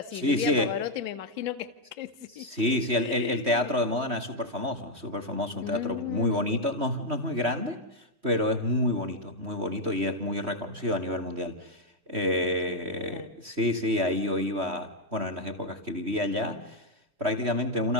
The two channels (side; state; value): left; late; 3.1 ms